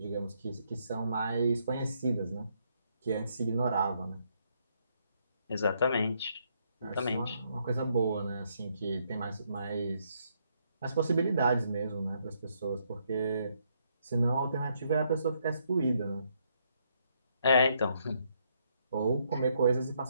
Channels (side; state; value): both; inverted; correlation -0.74